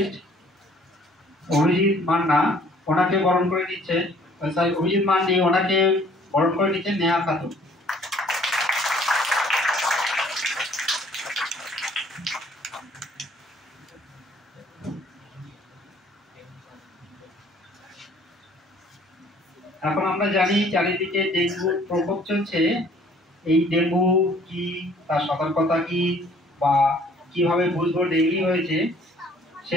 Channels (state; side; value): normal; both; correlation 0.57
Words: অভিজিৎ মান্না, ওনাকে বরণ করে নিচ্ছে অভিজিৎ মান্ডি, ওনাকে বরণ করে নিচ্ছেন নেহা খাতুন। এখন আমরা জানি চারিদিকে ডেঙ্গুর প্রকোপ চলছে। এই ডেঙ্গু কি, তার সতর্কতা কি, বা কিভাবে বুঝবো ডেঙ্গু হয়েছে, সে